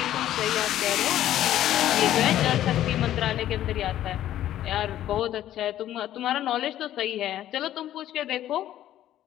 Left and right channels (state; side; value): quieter; right; 12.5 dB